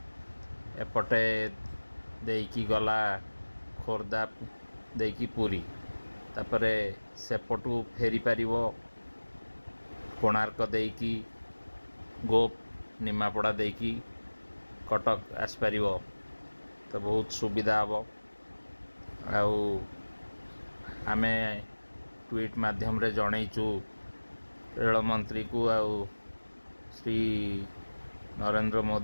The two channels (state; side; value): inverted; both; correlation -1.00